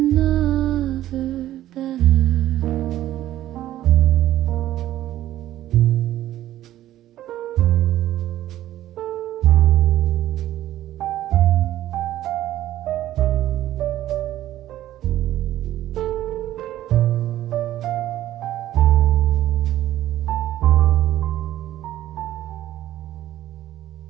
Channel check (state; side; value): quieter; left; 13.5 dB